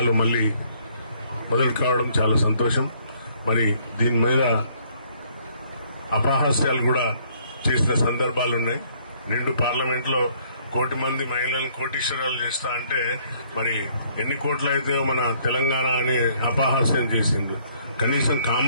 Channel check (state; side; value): inverted; both; correlation -0.64